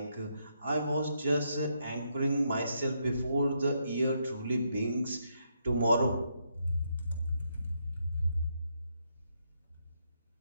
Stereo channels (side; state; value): both; inverted; correlation -0.78